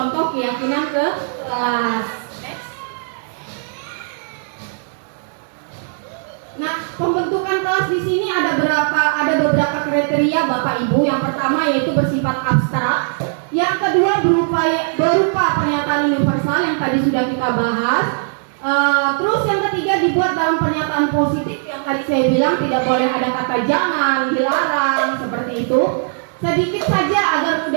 keyakinan ke kelas. Nah, pembentukan kelas di sini ada beberapa kriteria Bapak Ibu. Yang pertama yaitu bersifat abstrak. Yang kedua berupa pernyataan universal yang tadi sudah kita bahas. Terus yang ketiga dibuat dalam pernyataan positif yang tadi saya bilang tidak boleh ada kata jangan, dilarang, seperti itu. Sedikit saja agar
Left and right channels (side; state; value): left; silent; digital silence